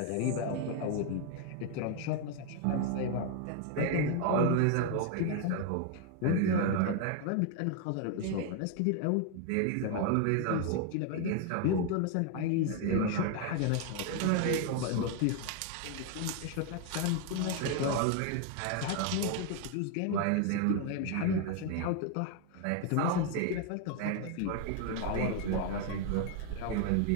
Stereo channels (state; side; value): different; both; correlation 0.01